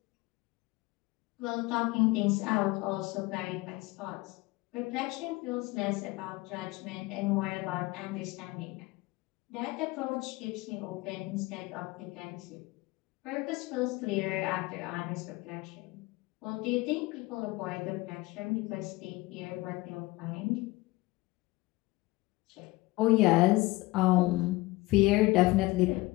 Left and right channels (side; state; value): right; quieter; 21.0 dB